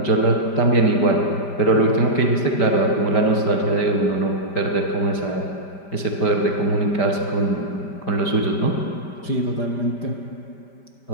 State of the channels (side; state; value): right; late; 5.1 ms